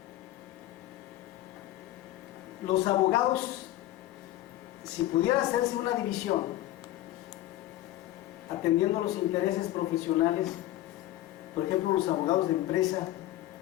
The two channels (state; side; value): quieter; right; 14.9 dB